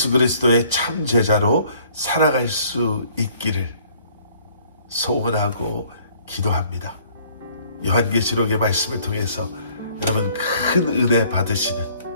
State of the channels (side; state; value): both; inverted; correlation -0.59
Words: 그리스도의 참 제자로 살아갈 수 있기를 소원하고 기도합니다. 요한계시록의 말씀을 통해서 여러분 큰 은혜 받으시는